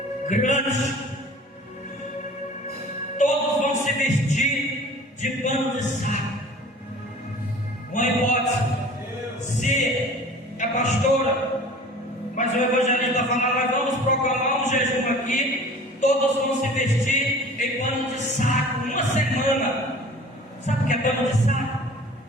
grande. Todos vão se vestir de pano de saco. Uma hipótese: se a pastora, mas o evangelista fala, nós vamos proclamar um jejum aqui, todos vão se vestir em pano de saco, uma semana. Sabe o que é pano de saco?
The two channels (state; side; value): normal; both; correlation 0.44